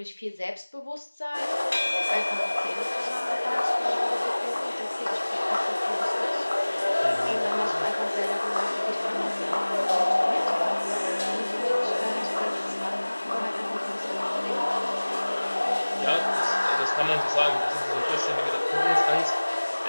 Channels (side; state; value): both; inverted; correlation -1.00